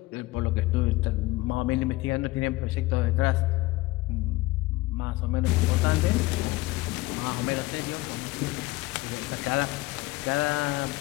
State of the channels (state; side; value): quieter; right; 20.0 dB